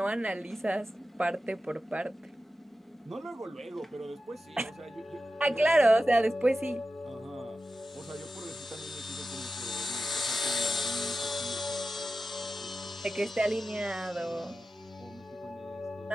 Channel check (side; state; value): both; normal; correlation 0.92